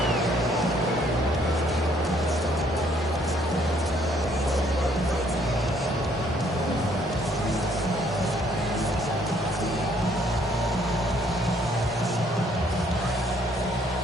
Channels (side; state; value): both; normal; correlation 0.65